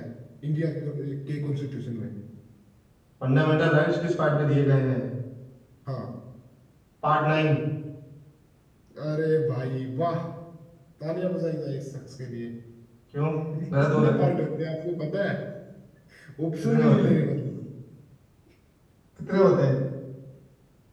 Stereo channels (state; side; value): identical; both; correlation 1.00